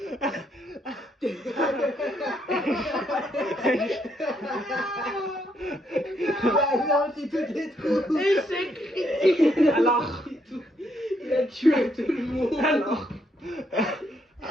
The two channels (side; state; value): both; normal; correlation 0.74